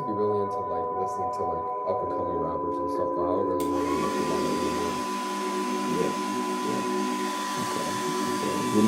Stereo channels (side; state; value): both; identical; correlation 1.00